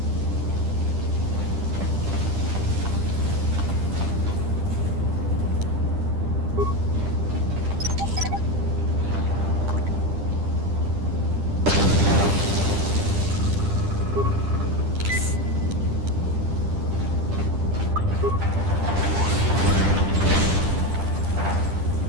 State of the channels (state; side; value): late; left; 10 ms